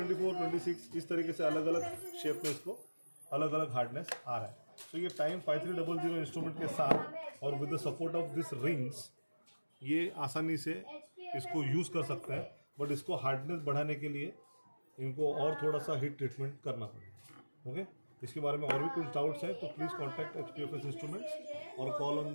26 इस तरीके से अलग अलग शेप में इसको अलग अलग हार्डनेस आ रहा है। तो ये टाइम 5300 इंस्ट्रूमेंट के साथ और with the support of this rings ये आसानी से इसको यूज़ कर सकते हैं। बट इसको हार्डनेस बढ़ाने के लिए इनको और थोड़ा सा हीट ट्रीटमेंट करना पड़ेगा। ओके, इसके बारे में और भी कुछ डाउट्स हैं तो प्लीज़ कॉन्टैक्ट HPFS इंस्ट्रूमेंट्स और call on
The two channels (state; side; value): inverted; both; correlation -1.00